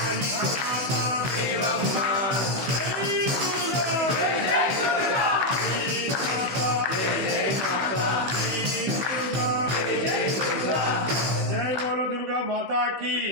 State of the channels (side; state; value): left; late; 16 ms